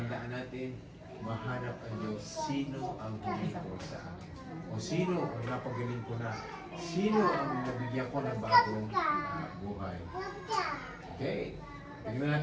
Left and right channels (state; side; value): identical; both; correlation 1.00